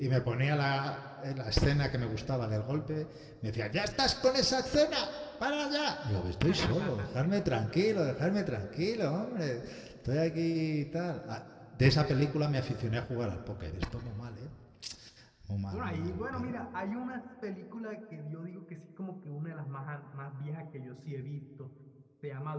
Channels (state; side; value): identical; both; correlation 1.00